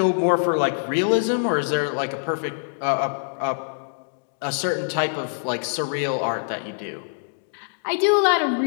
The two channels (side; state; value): right; silent; digital silence